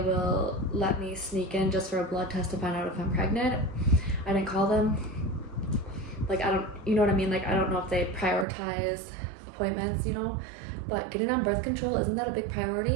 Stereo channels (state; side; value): drops out; left; at 8.5 s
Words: will let me sneak in just for a blood test to find out if I'm pregnant. I didn't call them. Like, I don't, you know what I mean? Like, I don't know if they prioritize appointments, you know? But getting on birth control, isn't that a big